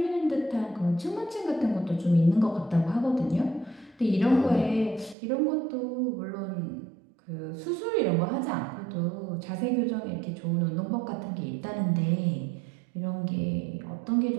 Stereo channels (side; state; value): left; drops out; at 5.2 s